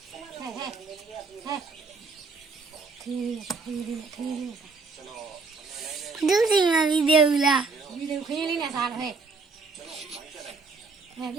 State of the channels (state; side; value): quieter; left; 4.3 dB